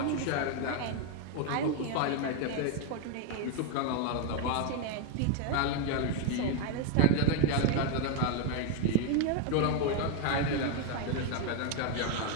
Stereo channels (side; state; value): both; different; correlation 0.01